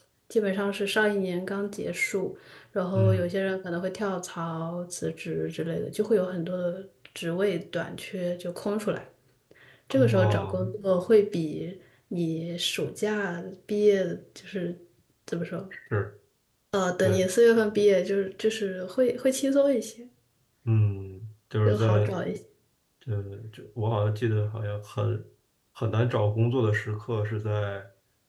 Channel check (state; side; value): identical; both; correlation 1.00